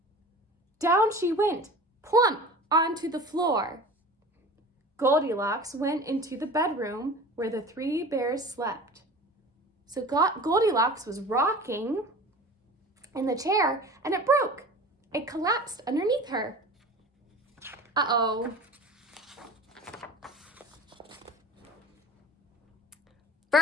Down she went, plump onto the floor. Goldilocks went into the bedroom where the 3 bears slept. So Goldilocks was rocking in the chair and it broke. It collapsed underneath her. Uh-oh.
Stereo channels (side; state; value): both; normal; correlation 0.39